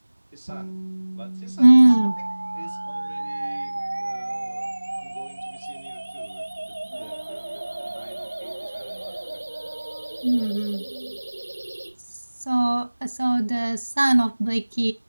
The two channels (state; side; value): inverted; both; correlation -1.00